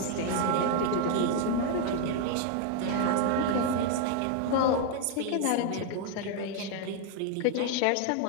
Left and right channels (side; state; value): both; different; correlation 0.00